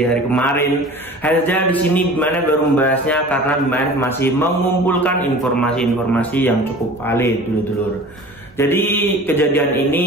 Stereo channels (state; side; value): normal; both; correlation 0.41